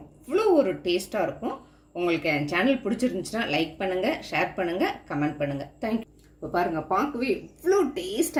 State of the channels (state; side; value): identical; both; correlation 1.00